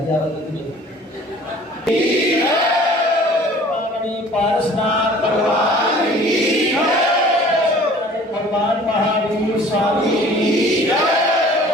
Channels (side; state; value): both; normal; correlation 0.49